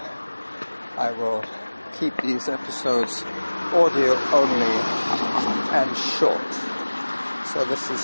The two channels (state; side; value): inverted; both; correlation -1.00